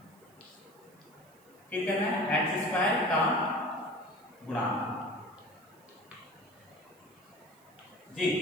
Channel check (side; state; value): right; noise; hiss, 29 dB below the sound